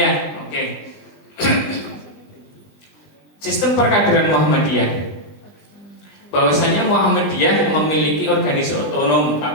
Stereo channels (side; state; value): right; late; 20 ms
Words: oke. Sistem perkaderan Muhammadiyah. Bahwasanya Muhammadiyah memiliki organisasi otonom,